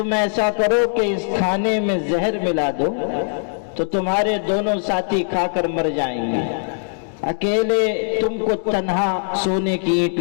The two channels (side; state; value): right; silent; digital silence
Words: ایسا کرو کہ اس کھانے میں زہر ملا دو تو تمہارے دونوں ساتھی کھا کر مر جائیں گے، اکیلے تم کو تنہا سونے کی اینٹ